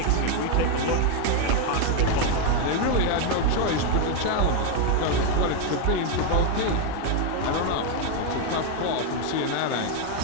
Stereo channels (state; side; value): different; both; correlation 0.01